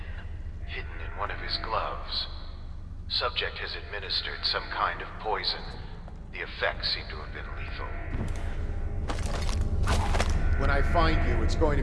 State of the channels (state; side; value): identical; both; correlation 1.00